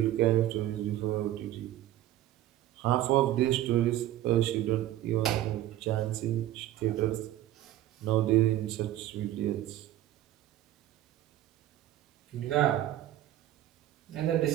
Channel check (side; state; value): left; quieter; 13.7 dB